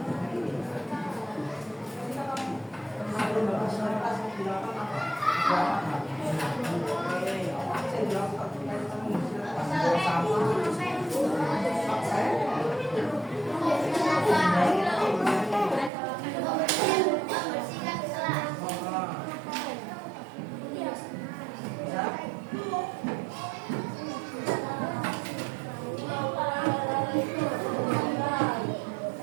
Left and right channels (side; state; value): left; drops out; at 15.9 s